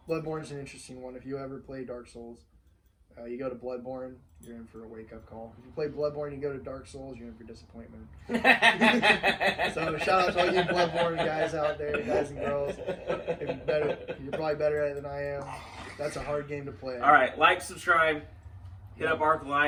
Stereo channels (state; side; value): identical; both; correlation 1.00